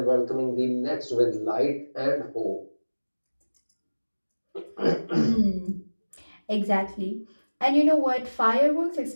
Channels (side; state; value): both; inverted; correlation -1.00